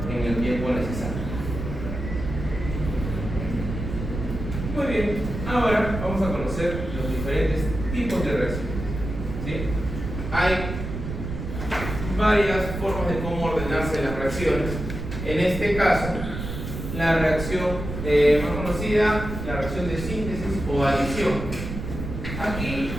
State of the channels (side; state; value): right; noise; rumble, 6 dB below the sound